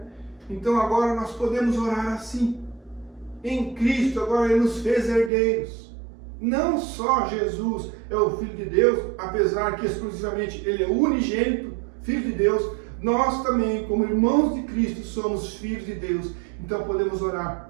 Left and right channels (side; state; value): left; drops out; at 5.3 s